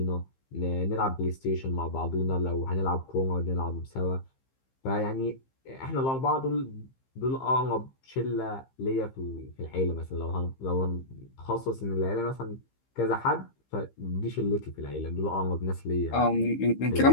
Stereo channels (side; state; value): right; late; 15 ms